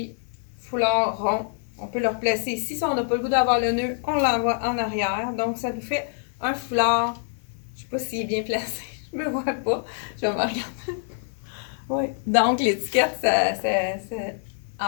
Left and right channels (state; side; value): silent; right; 61 dB below the other